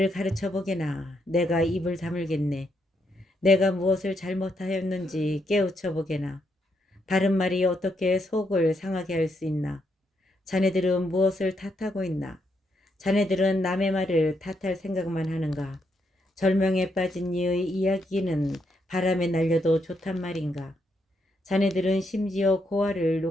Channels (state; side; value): normal; both; correlation 0.78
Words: 가르쳐보게나. 내가 입을 다물겠네. 내가 무엇을 잘못하였는지 깨우쳐보게나. 바른 말이 어떻게 속을 상하게 할 수 있나. 자네들은 무엇을 탓하고 있나. 자네들은 남의 말을 탓할 생각만 하는가. 절명에 빠진 이의 이야기는 바람에 날려도 좋단 말인가. 자네들은 심지어 고아를